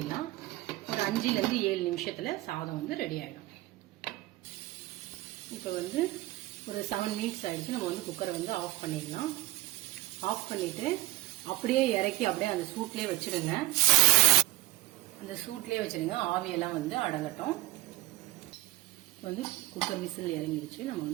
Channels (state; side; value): quieter; left; 18.9 dB